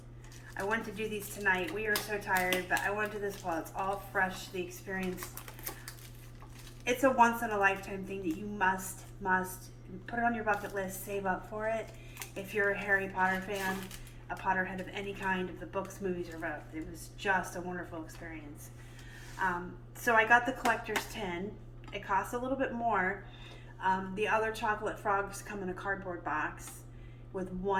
I wanted to do these tonight. We are so tired, but I want to do this while it's all fresh, the experience. It's a once in a lifetime thing that you must put it on your bucket list, save up for it. If you're a Harry Potter fan, a Potterhead of any kind, of the books, movies, or both. It was just a wonderful experience. So I got the collector's tin. It costs a little bit more. The other chocolate frogs come in a cardboard box with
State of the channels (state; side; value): identical; both; correlation 1.00